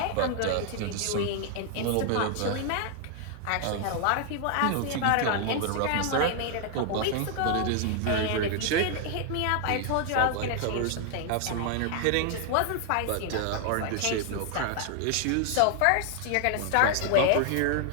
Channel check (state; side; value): different; both; correlation 0.00